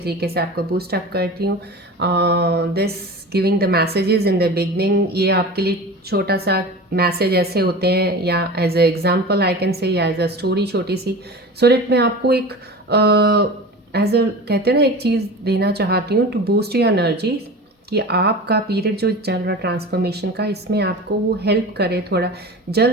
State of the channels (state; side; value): normal; both; correlation 0.33